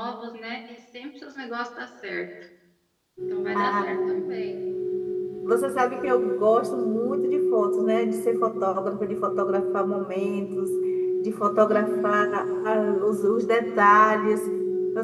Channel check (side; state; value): both; identical; correlation 1.00